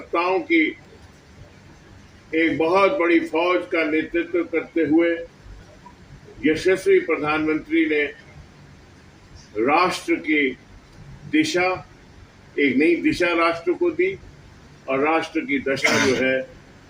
की एक बहुत बड़ी फौज का नेतृत्व करते हुए यशस्वी प्रधानमंत्री ने राष्ट्र की दिशा, एक नई दिशा राष्ट्र को दी और राष्ट्र की दशा जो है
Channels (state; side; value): identical; both; correlation 1.00